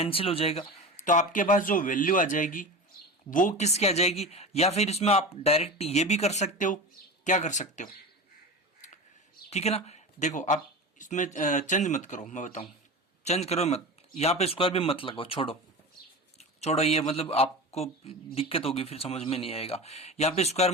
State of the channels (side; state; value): both; normal; correlation 0.29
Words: हो जाएगा। तो आपके पास जो वैल्यू आ जाएगी वो किसकी आ जाएगी? या फिर इसमें आप डायरेक्ट ये भी कर सकते हो। क्या कर सकते हो? ठीक है ना? देखो, आप इसमें चेंज मत करो, मैं बताऊं, चेंज करो मत, यहां पे स्क्वायर भी मत लगाओ, छोड़ो छोड़ो, ये मतलब आपको दिक्कत होगी, फिर समझ में नहीं आएगा। यहाँ पे स्क्वायर